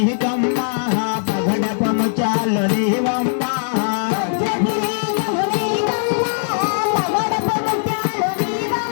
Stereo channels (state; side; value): silent; right; digital silence